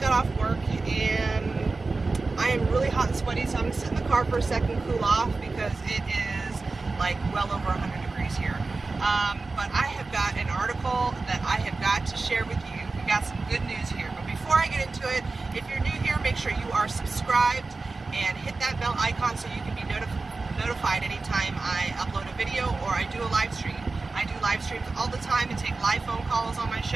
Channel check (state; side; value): quieter; left; 3.7 dB